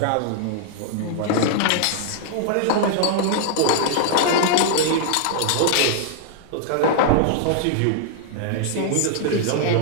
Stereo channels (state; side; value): different; both; correlation -0.01